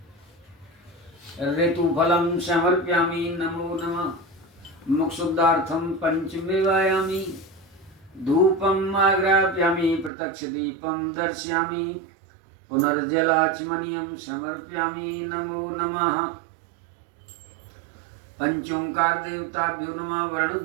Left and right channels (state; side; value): drops out; left; at 10.1 s